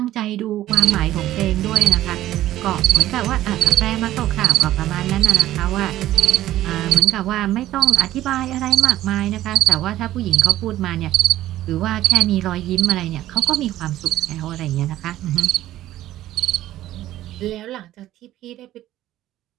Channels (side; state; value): left; quieter; 14.1 dB